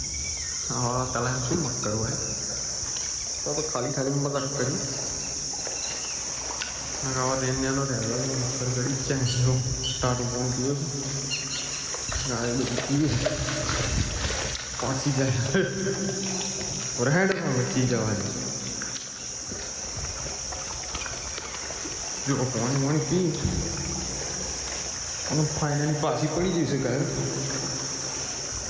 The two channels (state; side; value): identical; both; correlation 1.00